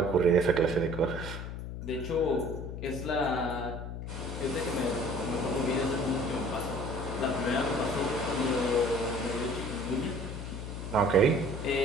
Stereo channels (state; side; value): noise; left; hum, 7 dB below the sound